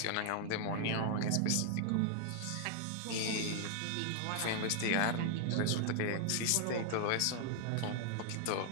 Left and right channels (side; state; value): both; different; correlation 0.00